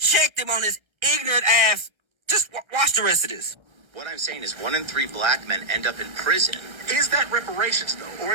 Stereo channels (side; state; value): left; late; 1.3 ms